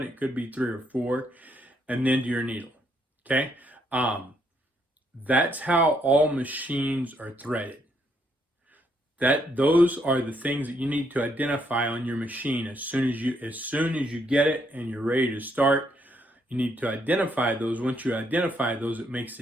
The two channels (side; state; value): both; normal; correlation 0.73